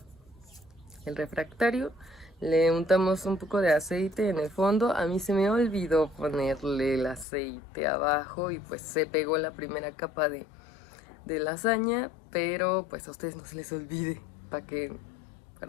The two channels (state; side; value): drops out; right; at 7.2 s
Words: el refractario. Le untamos un poco de aceite en el fondo. A mí se me olvidó ponerle el aceite abajo y pues se pegó la primera capa de lasaña, pero pues a ustedes no se les olvide para que